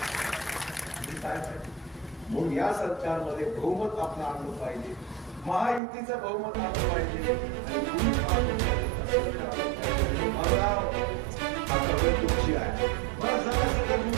म्हणून या सरकारमध्ये बहुमत आपलं आणलं पाहिजे, महायुतीचं बहुमत आणलं पाहिजे. आता वेळ तुमची आहे. मला सांगा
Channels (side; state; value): left; drops out; at 5.8 s